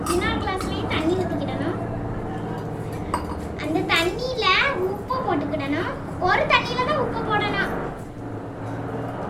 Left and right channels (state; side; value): identical; both; correlation 1.00